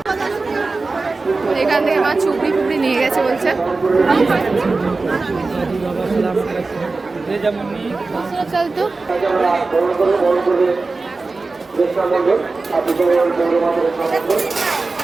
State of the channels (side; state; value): left; quieter; 3.7 dB